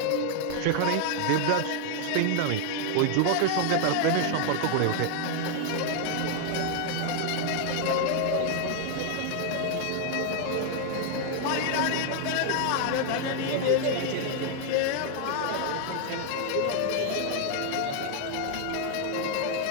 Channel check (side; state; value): both; different; correlation 0.00